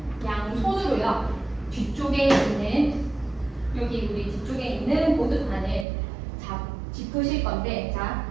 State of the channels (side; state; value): left; drops out; at 5.9 s